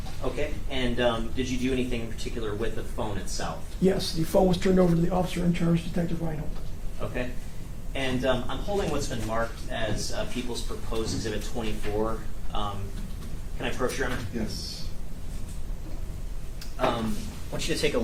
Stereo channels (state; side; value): identical; both; correlation 1.00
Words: Okay, and did you do anything in particular with the phone itself? Yes, the phone was turned over to the officer in charge, Detective Reinhold. Okay, and I'm holding what's been marked as People's Proposed Exhibit 24. Can I approach, Your Honor? Yes. I want you to take a